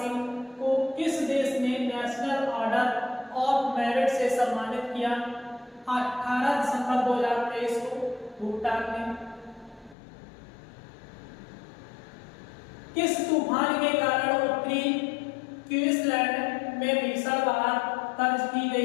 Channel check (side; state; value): right; drops out; at 10.0 s